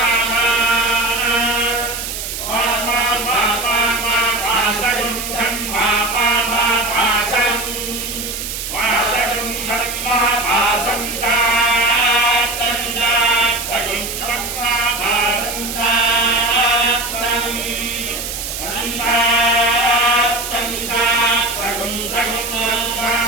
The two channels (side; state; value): right; noise; hiss, 6 dB below the sound